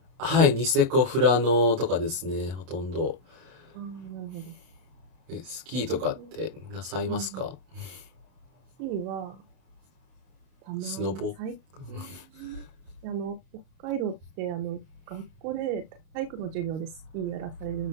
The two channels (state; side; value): late; left; 31 ms